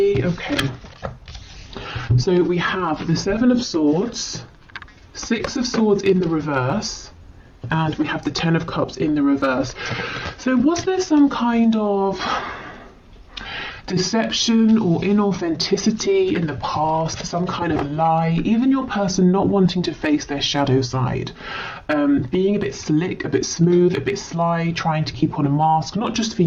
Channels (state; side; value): identical; both; correlation 1.00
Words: Okay. So we have the Seven of Swords, Six of Swords in the reverse, and we have the Ten of Cups in the reverse. So was there some kind of deception or inauthenticity in the past, some kind of lie, even your person not wanting to face their shadow side, being a bit slick, a bit smooth, a bit sly, trying to keep on a mask, not just for